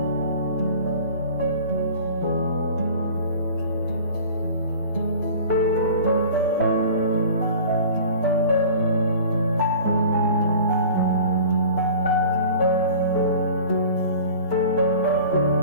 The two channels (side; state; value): both; inverted; correlation -0.42